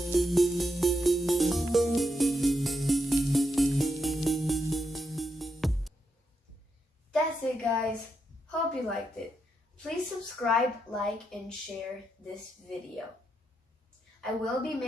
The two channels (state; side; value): normal; both; correlation 0.83